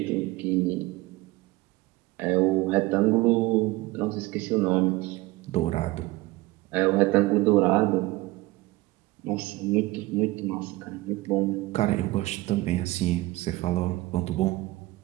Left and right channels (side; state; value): left; quieter; 19.7 dB